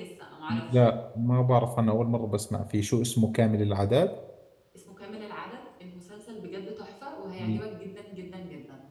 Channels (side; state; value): both; identical; correlation 1.00